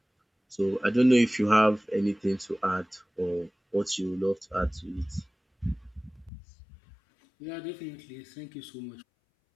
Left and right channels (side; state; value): right; drops out; at 6.3 s